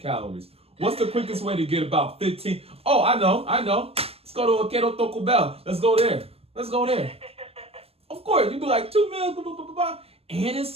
What's the quickest way to get about 15? Oh, I know. Let's go to Quero Taco Bell. Let's go there. Of course, you'd be like 2 meals, blah, blah, blah, blah, blah. And it's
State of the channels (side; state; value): left; late; 0.28 ms